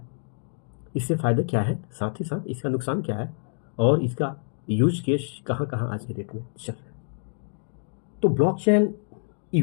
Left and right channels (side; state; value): right; silent; 60 dB below the other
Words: इससे फ़ायदे क्या है, साथ ही साथ इसका नुकसान क्या है, और इसका यूज केस कहाँ कहाँ आज के डेट में चल रहा है। तो ब्लॉकचेन